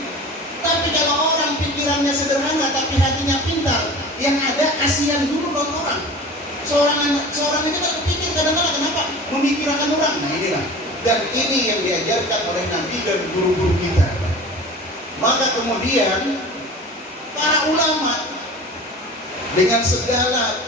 Tapi kalau orang pikirannya sederhana tapi hatinya pintar, yang ada kasihan dulu buat orang. Seorang itu kan pikir kadang-kadang kenapa memikirkan orang. Nah inilah, dan ini yang diajarkan oleh Nabi dan guru-guru kita. Maka kemudian para ulama dengan segala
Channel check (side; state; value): both; normal; correlation 0.38